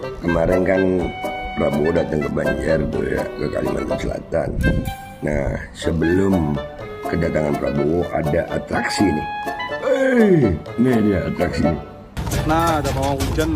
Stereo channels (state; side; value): identical; both; correlation 1.00